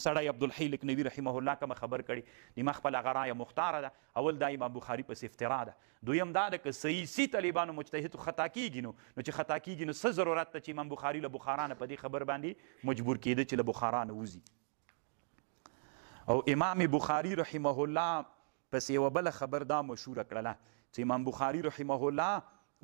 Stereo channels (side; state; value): left; silent; digital silence